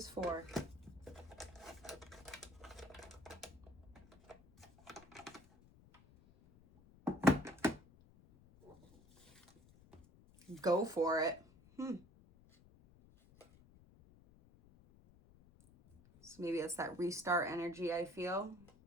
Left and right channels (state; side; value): noise; left; rumble, 24 dB below the sound